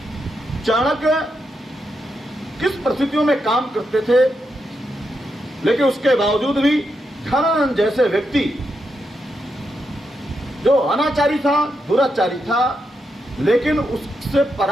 चाणक्य किस परिस्थितियों में काम करते थे, लेकिन उसके बावजूद भी धनानंद जैसे व्यक्ति जो अनाचारी था, दुराचारी था, लेकिन उससे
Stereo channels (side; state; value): both; normal; correlation 0.84